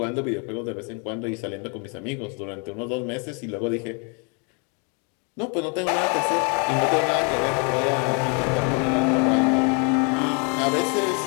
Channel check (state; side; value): quieter; right; 36.1 dB